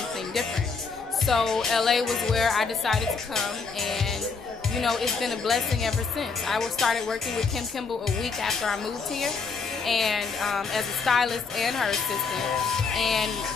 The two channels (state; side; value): quieter; right; 4.9 dB